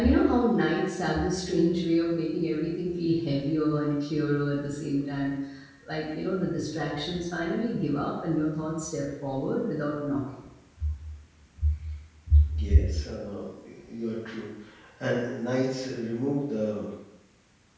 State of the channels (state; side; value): identical; both; correlation 1.00